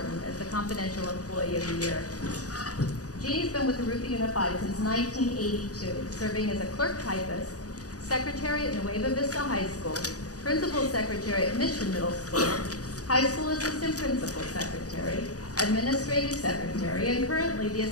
as the confidential employee of the year. Jeannie's been with Jurupa Unified since 1982, serving as a clerk typist, secretary at Nueva Vista High School, principal secretary at Mission Middle School, high school assistant principal secretary, administrative secretary, and currently the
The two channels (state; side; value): late; right; 0.67 ms